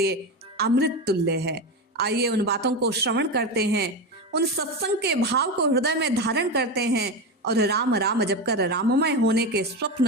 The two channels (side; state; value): both; normal; correlation 0.18